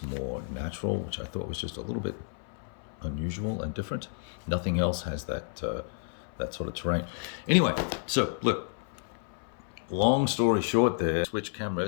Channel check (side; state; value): right; silent; 56 dB below the other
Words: more natural, which I thought was just a little bit unusual and different. Nothing else has that that sort of terrain. Anyway, so look, long story short there, switch